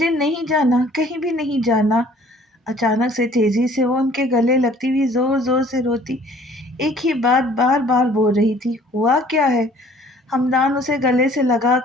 نہیں جانا، کہیں بھی نہیں جانا۔ اچانک سے تیزی سے وہ ان کے گلے لگتی ہوئی زور زور سے روتی ایک ہی بات بار بار بول رہی تھی، ہوا کیا ہے؟ ہمدان اسے گلے سے لگا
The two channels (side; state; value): both; normal; correlation 0.55